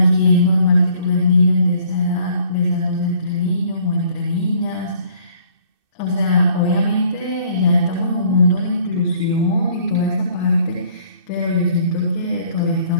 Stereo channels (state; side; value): late; left; 2.6 ms